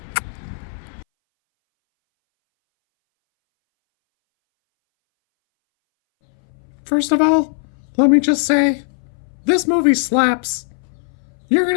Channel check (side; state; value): right; silent; 62 dB below the other